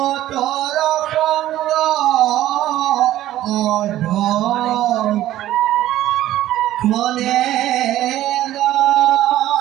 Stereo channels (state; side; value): quieter; left; 13.8 dB